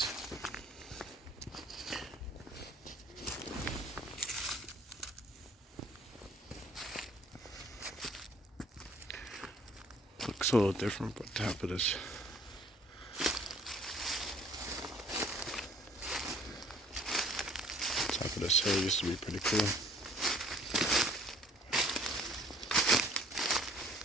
Looks a little different, but top of this hill used to be pretty cool.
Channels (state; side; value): normal; both; correlation 0.56